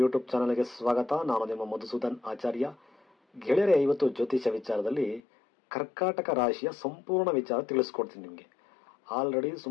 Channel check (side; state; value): right; drops out; at 5.2 s